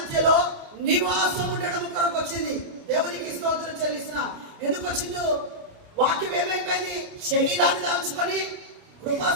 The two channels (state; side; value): late; left; 28 ms